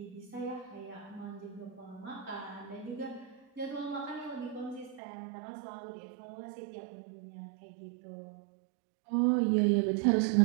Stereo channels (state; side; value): drops out; left; at 5.0 s